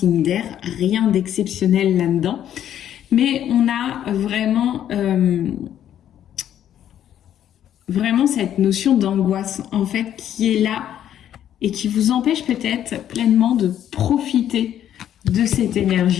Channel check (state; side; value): quieter; right; 10.6 dB